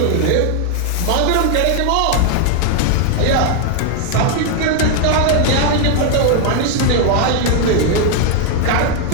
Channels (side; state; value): both; different; correlation 0.00